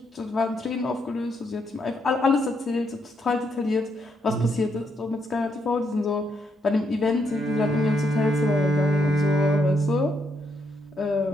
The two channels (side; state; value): both; normal; correlation 0.77